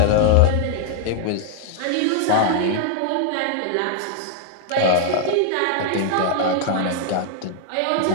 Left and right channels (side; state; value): both; different; correlation 0.00